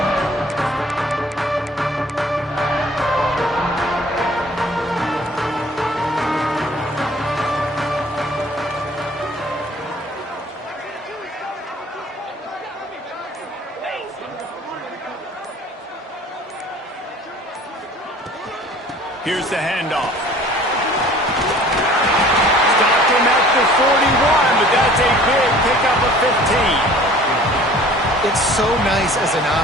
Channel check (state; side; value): normal; both; correlation 0.50